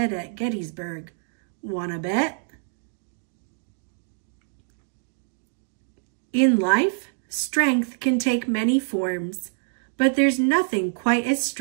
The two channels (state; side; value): silent; left; digital silence